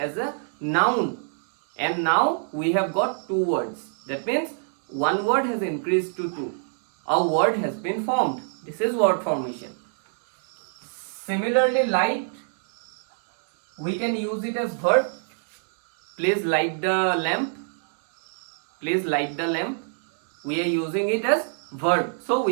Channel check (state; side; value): silent; left; digital silence